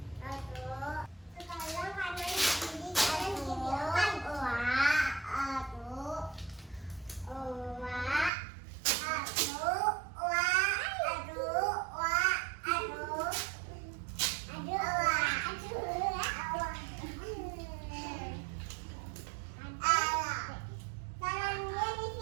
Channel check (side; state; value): left; drops out; at 8.3 s